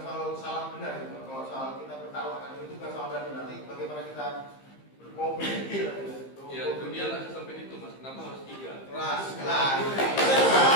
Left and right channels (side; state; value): right; late; 15 ms